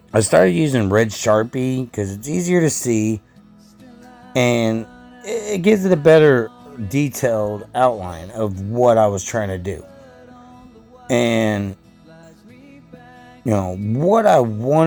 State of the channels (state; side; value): identical; both; correlation 1.00